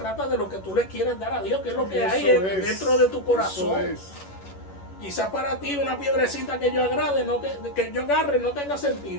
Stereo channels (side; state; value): right; late; 11 ms